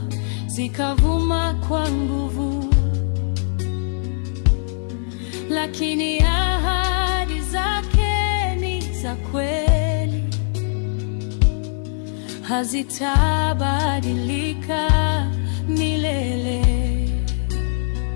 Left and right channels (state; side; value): silent; right; digital silence